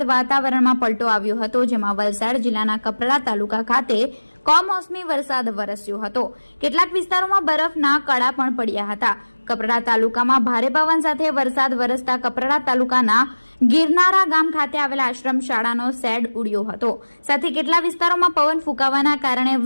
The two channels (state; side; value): inverted; both; correlation -1.00